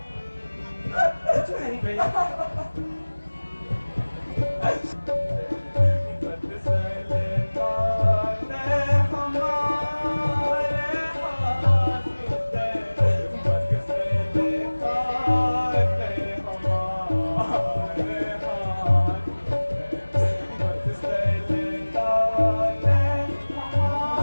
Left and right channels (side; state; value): both; inverted; correlation -1.00